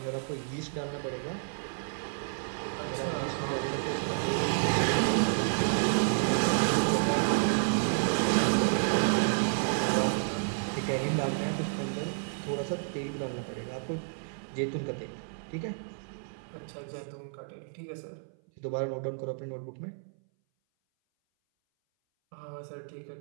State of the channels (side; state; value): left; silent; 57 dB below the other